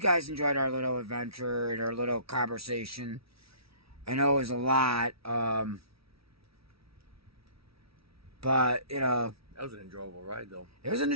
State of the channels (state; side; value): late; left; 0.76 ms